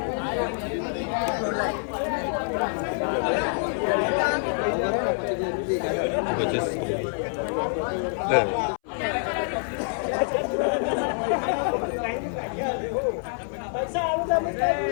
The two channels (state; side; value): silent; right; 61 dB below the other